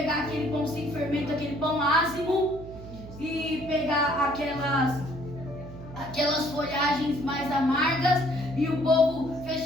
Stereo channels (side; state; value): right; noise; hum, 14 dB below the sound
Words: aquele pão sem fermento, aquele pão ázimo, e pegar aquelas folhagens mais amargas, e o povo